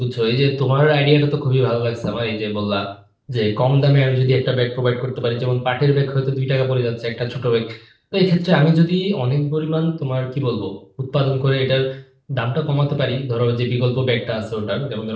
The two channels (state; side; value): identical; both; correlation 1.00